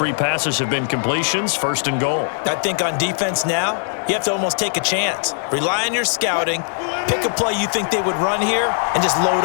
passes have been completions. 1st and goal. I think on defense now, you have to almost take a chance. Rely on your scouting. Pick a play you think they would run here and just load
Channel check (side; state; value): right; silent; 66 dB below the other